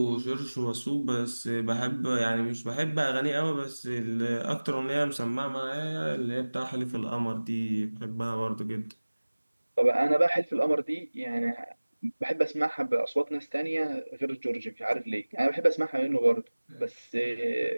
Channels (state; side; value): inverted; both; correlation -1.00